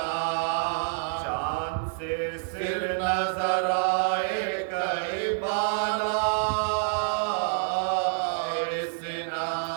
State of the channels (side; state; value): left; silent; digital silence